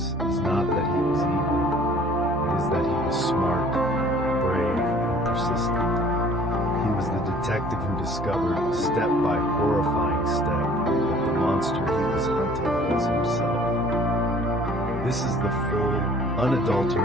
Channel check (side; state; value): both; normal; correlation 0.53